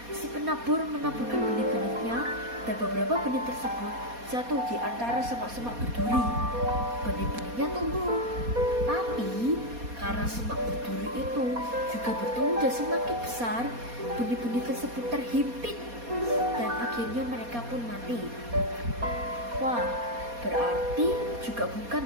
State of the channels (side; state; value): left; late; 4.2 ms